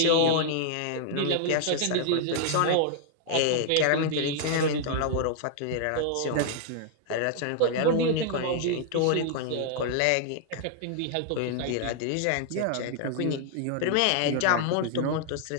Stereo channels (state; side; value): different; both; correlation 0.00